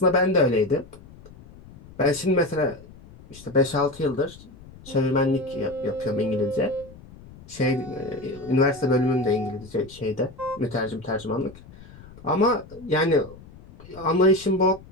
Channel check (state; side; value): noise; left; rumble, 20 dB below the sound